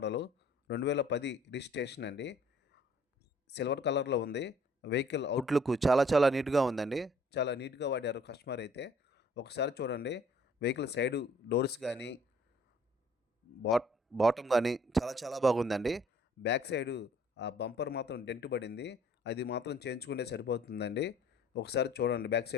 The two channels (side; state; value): both; normal; correlation 0.57